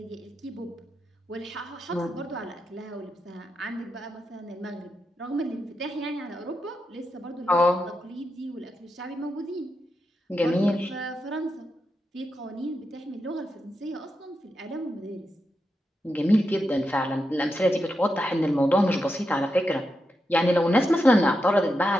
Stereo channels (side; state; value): both; normal; correlation 0.86